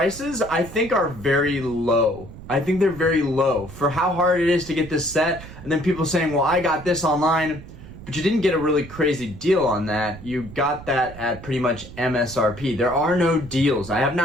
I think are very low. I think they're very low for how hard it is to get this set. And then people saying, well, I got this online, but you didn't get a really crazy deal on that. You got that at pretty much MSRP. There are no deals. I have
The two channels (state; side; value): noise; right; rumble, 15 dB below the sound